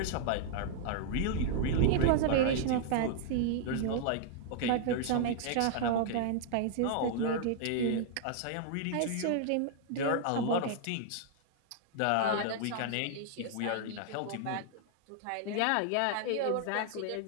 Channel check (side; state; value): both; different; correlation -0.01